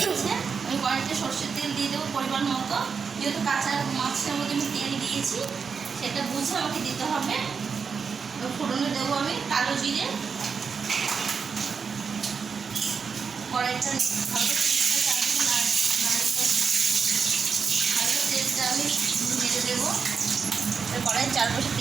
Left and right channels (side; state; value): left; quieter; 5.8 dB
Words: গেছে, আমি কড়াইতে সরষের তেল দিয়ে দেবো পরিমাণ মতো। যেহেতু কাঁচা মাছের মধ্যে আমি তেল দিয়েছি, সেটা বুঝে আমাকে দিতে হবে। ফোড়নে দেবো আমি কালো জিরে। কড়াইটা তেলটা আমি দিয়ে দেবো। কড়াই চারপাশে